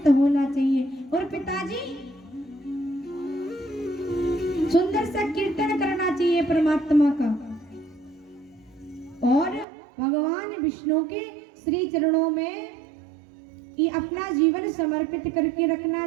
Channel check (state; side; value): drops out; left; at 9.7 s